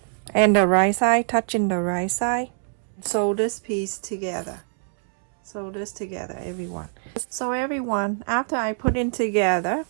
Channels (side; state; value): left; silent; digital silence